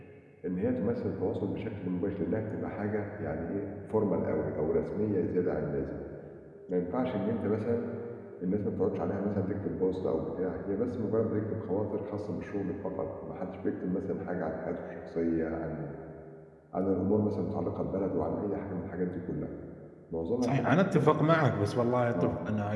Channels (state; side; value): identical; both; correlation 1.00